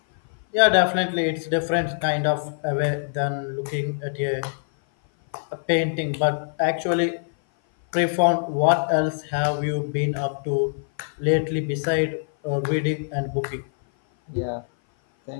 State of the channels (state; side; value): silent; right; 57 dB below the other